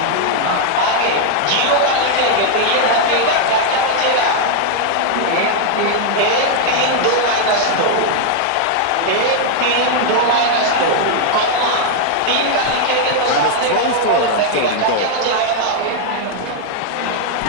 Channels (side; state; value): both; different; correlation 0.00